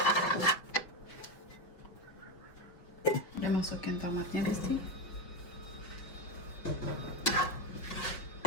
Udah masukin tomatnya, Besti.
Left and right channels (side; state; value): right; late; 5.4 ms